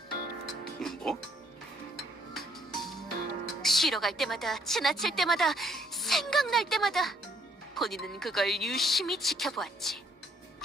뭐? 쉬러 갈 때마다, 지나칠 때마다, 생각날 때마다 본인은 그걸 유심히 지켜보았지.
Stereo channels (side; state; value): both; normal; correlation 0.66